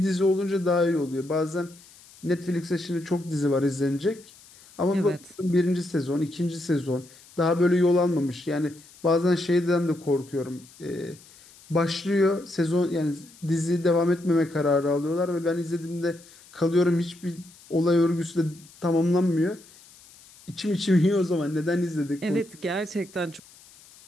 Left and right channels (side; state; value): left; noise; hiss, 24 dB below the sound